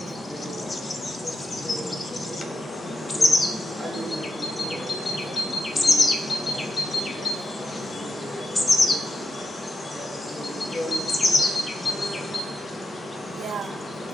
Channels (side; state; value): both; normal; correlation 0.87